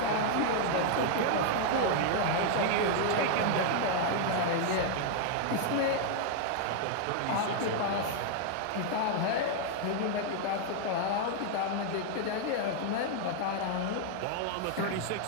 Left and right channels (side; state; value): both; different; correlation 0.00